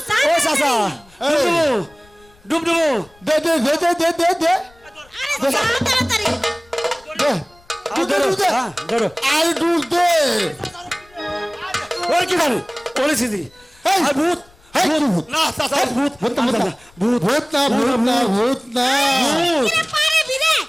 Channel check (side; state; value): left; noise; rumble, 29 dB below the sound